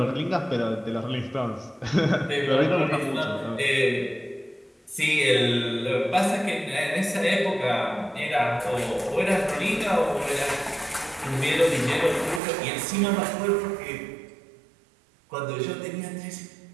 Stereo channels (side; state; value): left; drops out; at 12.4 s